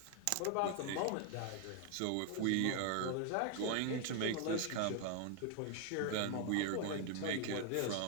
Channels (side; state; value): both; different; correlation 0.00